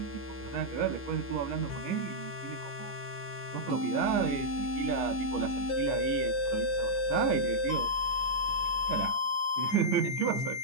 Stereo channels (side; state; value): right; late; 15 ms